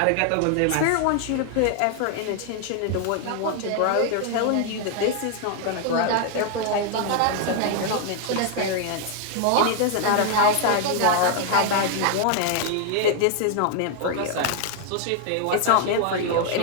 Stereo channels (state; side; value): different; both; correlation 0.00